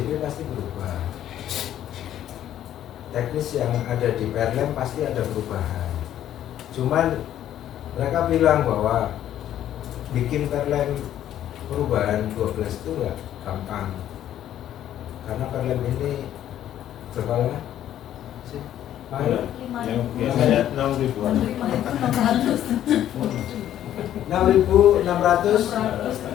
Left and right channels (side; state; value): right; quieter; 11.5 dB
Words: pasti berubah, teknis yang ada di Perlem pasti ada perubahan. Cuman mereka bilang bahwa bikin Perlem perubahan 12 itu nggak gampang karena Perlem ini berapa lama sih? Yang biasanya 6.000-an.